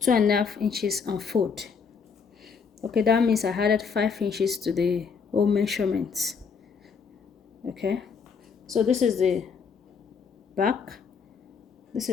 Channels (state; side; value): quieter; right; 5.8 dB